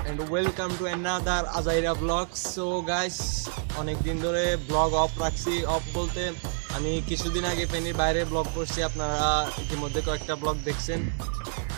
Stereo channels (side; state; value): left; silent; digital silence